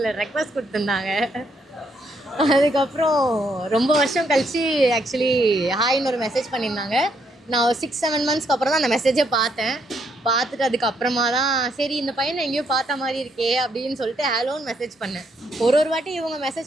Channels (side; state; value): both; normal; correlation 0.73